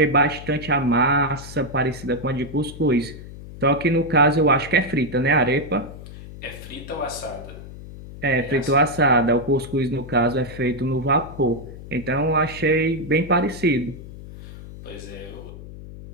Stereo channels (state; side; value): noise; left; hum, 14 dB below the sound